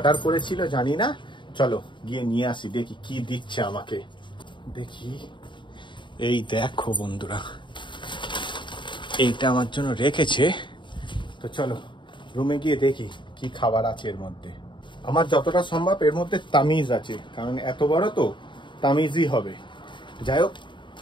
করেছিল জানি না, চলো গিয়ে নিয়ে আসি, দেখি কি দিচ্ছে আমাকে। দেখি, এই দেখো বন্ধুরা এইটা আমার জন্য রেখেছে। তো চলো রুমে গিয়ে দেখি কি খাবার আছে এর মধ্যে। আমার যতটা সম্ভব এর মধ্যে তামিজ আছে, কারণ এত বড় তো তামিজই হবে। যাই হোক,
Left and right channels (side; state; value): right; late; 0.23 ms